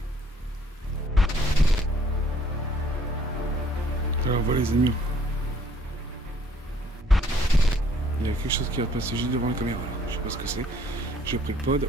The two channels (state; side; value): normal; both; correlation 0.62